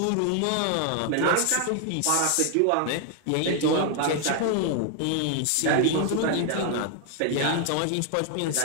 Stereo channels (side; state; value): both; different; correlation 0.00